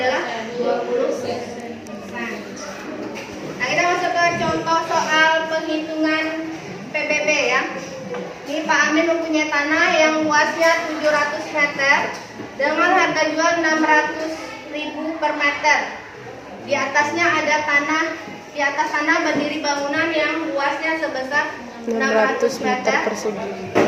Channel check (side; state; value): both; identical; correlation 1.00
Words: 20%. Nah, kita masuk ke contoh soal penghitungan PBB ya. Ini Pak Amin mempunyai tanah yang luasnya 700 meter dengan harga jual 600.000 per meter. Di atasnya ada tanah, di atas tanah berdiri bangunan yang luasnya sebesar 600 meter persegi